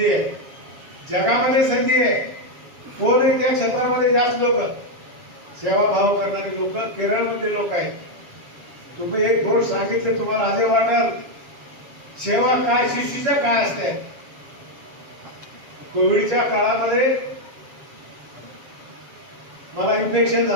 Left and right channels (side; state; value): left; late; 7.3 ms